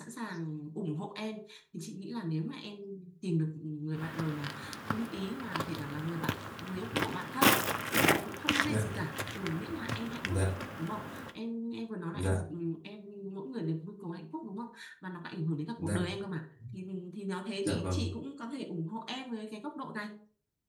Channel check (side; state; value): both; identical; correlation 1.00